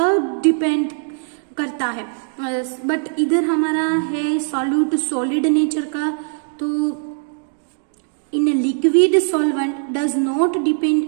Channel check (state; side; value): silent; left; 64 dB below the other